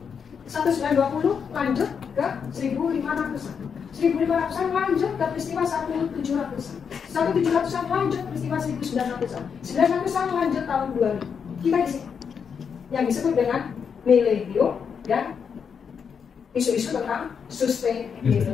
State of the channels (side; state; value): right; quieter; 6.7 dB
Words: 1920 lanjut ke 1500-an. 1500-an lanjut ke peristiwa 1700-an. 1700-an lanjut peristiwa 1900-an. 1900-an lanjut tahun 2000. Kita di sini yang disebut dengan milenium dan isu-isu tentang